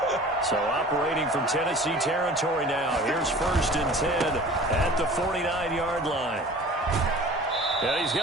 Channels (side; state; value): both; normal; correlation 0.43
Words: So operating from Tennessee territory now. Here's first and 10 at the 49-yard line. And he's